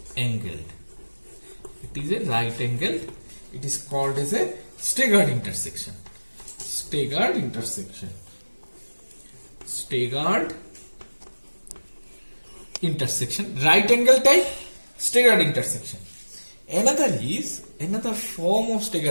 angled. It is called as a staggered intersection. Staggered intersection. Right angle type staggered intersection. Another form of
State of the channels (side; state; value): both; inverted; correlation -1.00